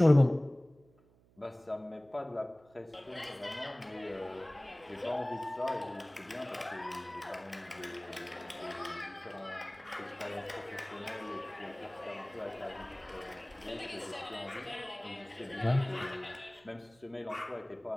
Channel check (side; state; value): right; noise; hum, 29 dB below the sound